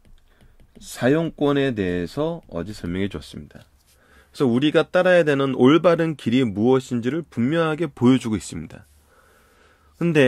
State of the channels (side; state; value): both; identical; correlation 1.00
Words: 사용권에 대해서 어제 설명해 줬습니다. 그래서 우리가 따라야 되는 올바른 길이 무엇인지를 분명하게 보여주고 있습니다.